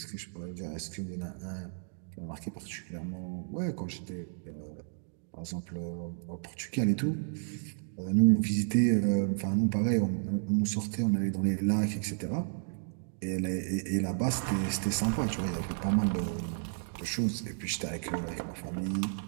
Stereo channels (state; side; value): silent; left; digital silence